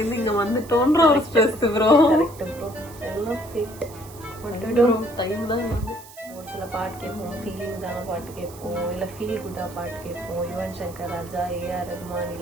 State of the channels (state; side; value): noise; right; hiss, 19 dB below the sound